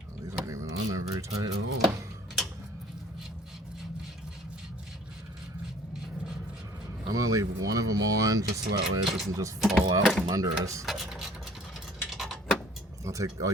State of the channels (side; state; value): both; normal; correlation 0.53